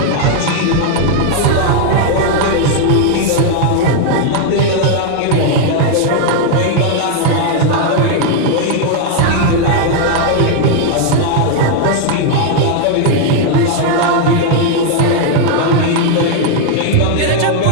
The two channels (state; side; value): different; both; correlation 0.00